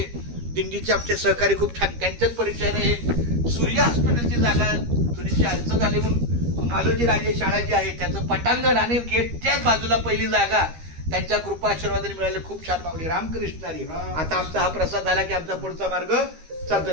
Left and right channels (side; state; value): left; late; 13 ms